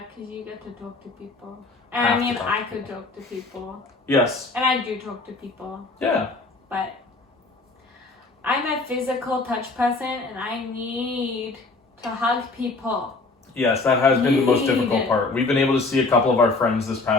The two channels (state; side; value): quieter; right; 3.5 dB